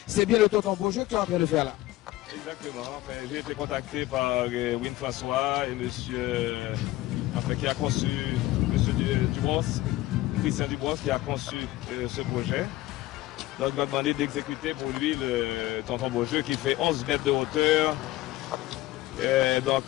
C'est bien le tonton Beaujeu que tu es en train de faire là. Exactement. Enfin, j'ai été contacté par Win François et monsieur qui a conçu, monsieur Dubos, Christian Dubos, qui a conçu ce projet. Donc, il m'a demandé d'exécuter pour lui le tonton Beaujeu qui fait 11 mètres de hauteur. Donc,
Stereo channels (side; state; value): right; quieter; 16.9 dB